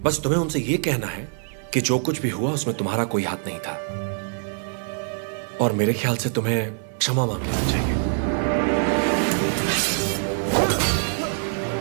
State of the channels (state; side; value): silent; left; digital silence